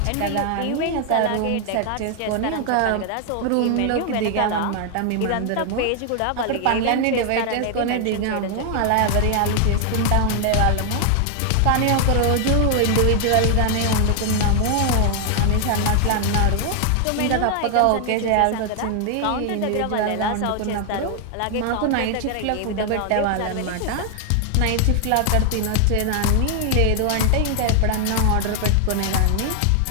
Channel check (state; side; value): different; both; correlation 0.00